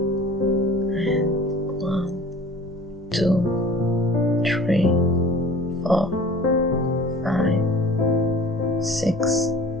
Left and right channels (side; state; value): both; normal; correlation 0.45